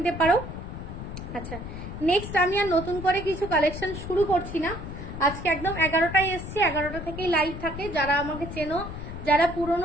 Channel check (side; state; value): left; noise; rumble, 9 dB below the sound